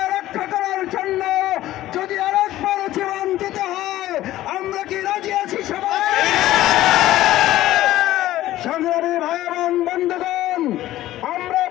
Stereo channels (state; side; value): quieter; right; 14.8 dB